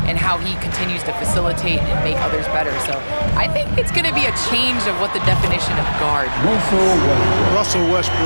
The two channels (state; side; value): inverted; both; correlation -1.00